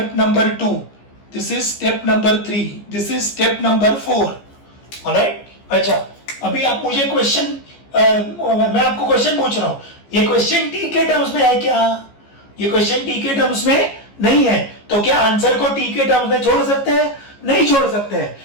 number 2. This is step number 3. This is step number 4. Alright? अच्छा, अभी आप मुझे क्वेश्चन मैं आपको क्वेश्चन पूछ रहा हूं, ये क्वेश्चन टी के टर्म्स में है क्या? ये क्वेश्चन टी के टर्म्स में नहीं है, तो क्या आंसर को टी के टर्म्स में छोड़ सकते हैं? नहीं छोड़ सकते हैं.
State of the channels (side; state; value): right; late; 15 ms